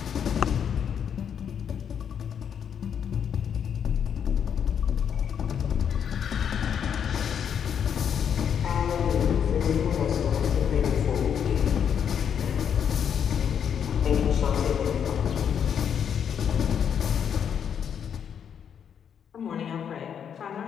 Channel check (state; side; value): quieter; right; 8.1 dB